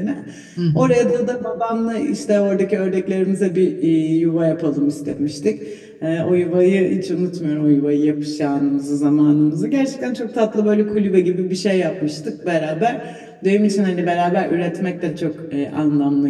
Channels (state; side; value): identical; both; correlation 1.00